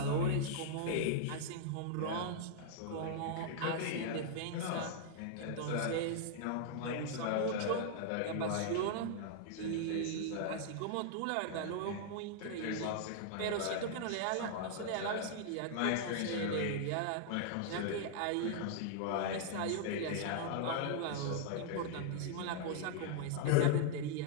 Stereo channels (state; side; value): different; both; correlation -0.01